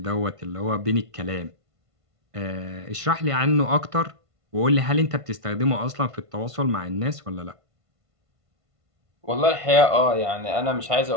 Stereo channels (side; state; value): left; late; 1.5 ms